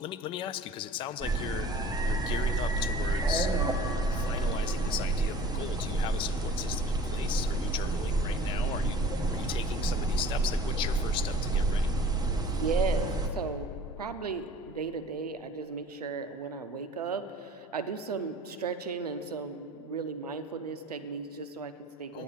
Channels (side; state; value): both; normal; correlation 0.46